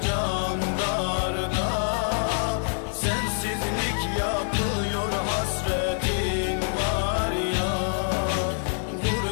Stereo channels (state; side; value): silent; right; 61 dB below the other